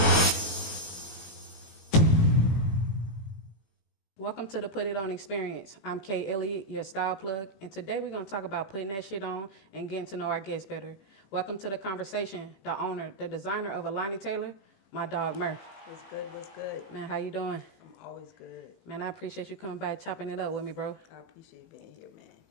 Welcome to the Put It On Experience. I'm Kay Elliott, your style plug, and today we're going to talk about putting that shit on and getting to know our guests better. Welcome to the conversation, the owner, the designer of Alani Taylor, my dog Murph. What's good? What's good? Man, how you doing? I'm always good. Man, I appreciate you coming by chopping it up with me, bro. I appreciate being here, man,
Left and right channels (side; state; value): right; late; 18 ms